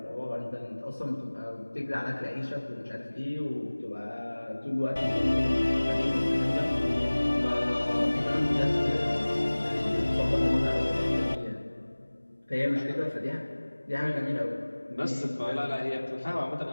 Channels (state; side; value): inverted; both; correlation -1.00